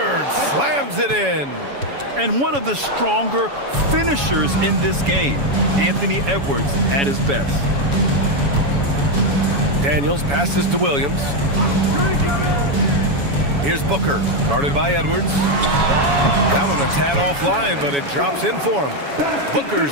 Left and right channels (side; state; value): left; late; 7.1 ms